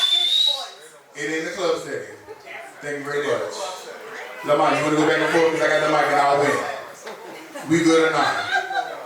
It in the club setting. Thank you very much. Lamont, you want to go back and forth because I got the mic and I'll win. We good or not?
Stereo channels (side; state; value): both; identical; correlation 1.00